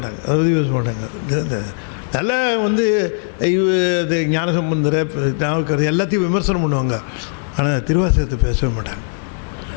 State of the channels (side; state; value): right; silent; digital silence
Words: அதை பற்றி பேச மாட்டாங்க. நல்லா இது ஞானசம்பந்தரை எல்லாத்தையும் விமர்சனம் பண்ணுவாங்க. ஆனால் திருவாசகத்தை பேசவே மாட்டாங்க.